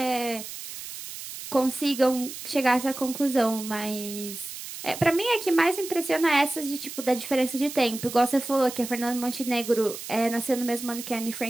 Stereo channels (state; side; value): noise; right; hiss, 10 dB below the sound